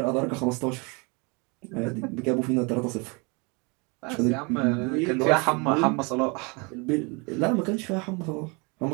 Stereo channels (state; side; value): quieter; left; 30.5 dB